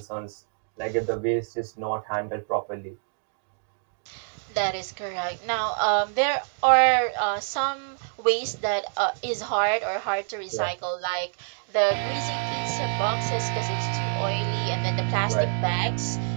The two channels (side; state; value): left; silent; 55 dB below the other